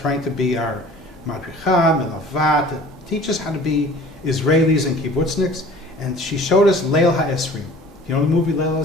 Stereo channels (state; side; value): normal; both; correlation 0.46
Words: to be our madricha, melavat, to teach us how to be Israelis and kibbutzniks, and she showed us Leil HaEsrim. You know the movie Leil